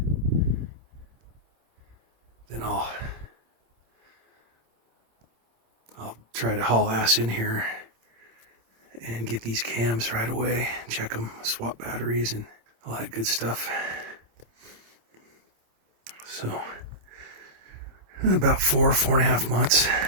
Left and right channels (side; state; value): left; late; 26 ms